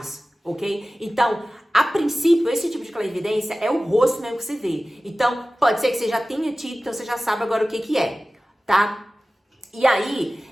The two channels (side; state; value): both; normal; correlation 0.96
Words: ok? Então, a princípio, esse tipo de clarividência é o rosto mesmo que você vê. Então, pode ser que você já tenha tido, então você já sabe agora o que é, tá? E aí,